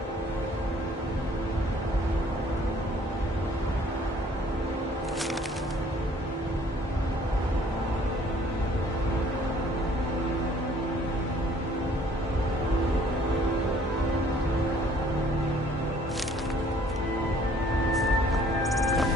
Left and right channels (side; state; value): both; normal; correlation 0.57